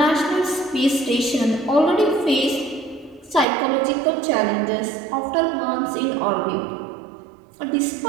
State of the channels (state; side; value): drops out; left; at 3.5 s